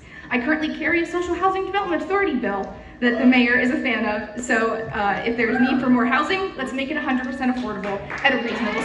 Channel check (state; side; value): identical; both; correlation 1.00